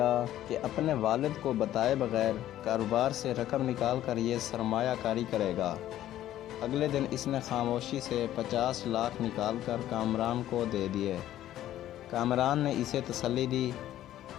کہ اپنے والد کو بتائے بغیر کاروبار سے رقم نکال کر یہ سرمایہ کاری کرے گا۔ اگلے دن اس نے خاموشی سے 50 لاکھ نکال کر کامران کو دے دیے۔ کامران نے اسے تسلی دی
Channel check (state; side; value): quieter; right; 12.9 dB